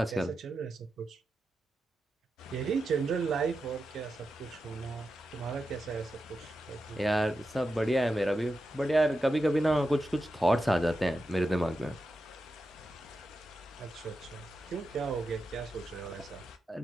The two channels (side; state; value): both; normal; correlation 0.89